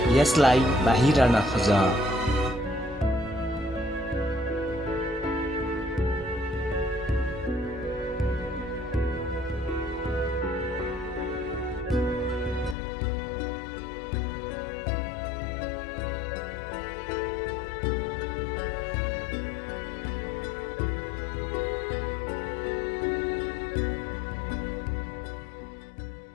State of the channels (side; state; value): right; drops out; at 12.8 s